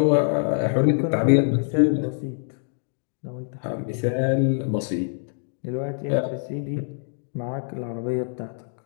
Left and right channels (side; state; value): right; silent; digital silence